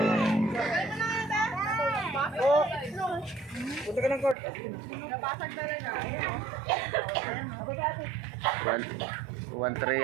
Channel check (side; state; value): left; drops out; at 4.4 s